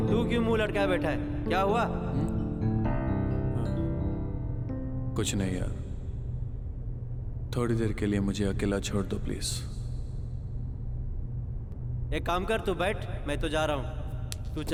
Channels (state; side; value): identical; both; correlation 1.00